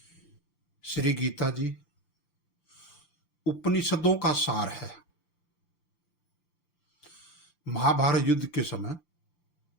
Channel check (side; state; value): right; late; 5.9 ms